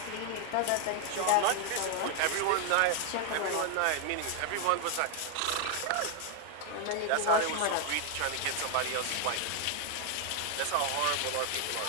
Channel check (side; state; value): both; different; correlation 0.00